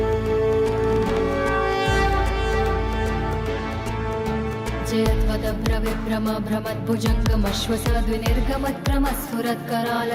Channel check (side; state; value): both; identical; correlation 1.00